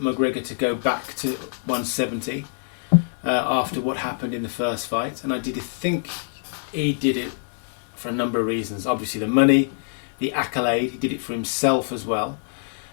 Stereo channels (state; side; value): silent; right; digital silence